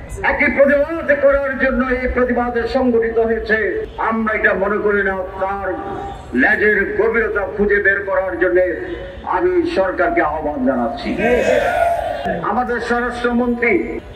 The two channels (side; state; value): both; identical; correlation 1.00